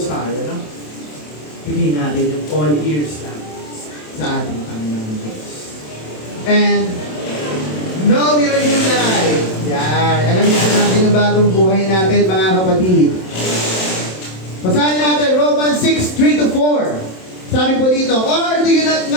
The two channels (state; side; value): late; right; 27 ms